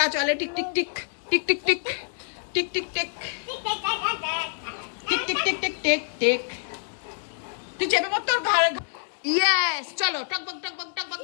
চলে tick tick tick tick tick tick tick tick tick tick tick tick tick tick tick. তুই চেপে পড় তোর ঘর। ইয়েস, চলো টকবক টকবক টকবক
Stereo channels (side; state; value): right; silent; digital silence